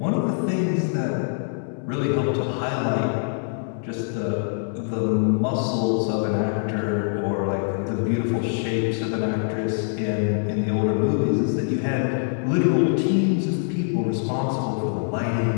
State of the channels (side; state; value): right; silent; 63 dB below the other